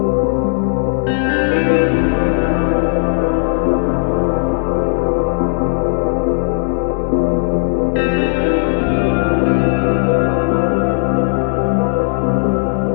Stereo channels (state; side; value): silent; right; digital silence